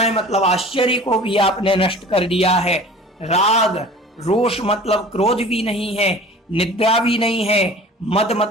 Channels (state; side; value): normal; both; correlation 0.43